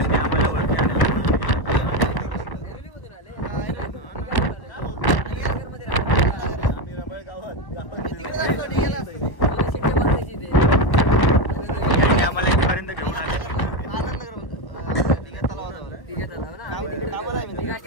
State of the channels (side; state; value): right; late; 1.1 ms